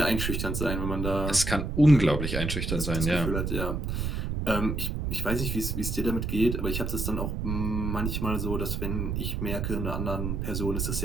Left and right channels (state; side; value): noise; right; rumble, 2 dB below the sound